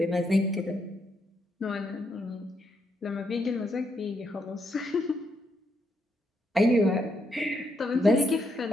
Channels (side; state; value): both; normal; correlation 0.78